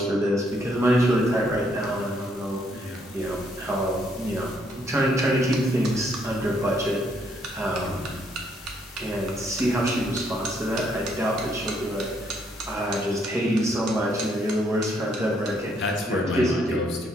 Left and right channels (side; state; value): both; normal; correlation 0.71